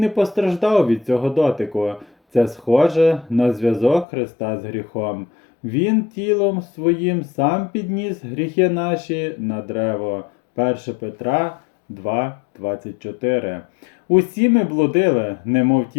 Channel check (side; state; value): right; drops out; at 4.0 s